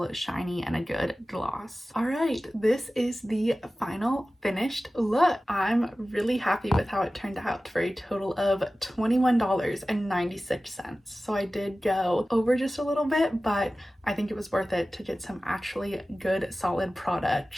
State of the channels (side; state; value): both; normal; correlation 0.96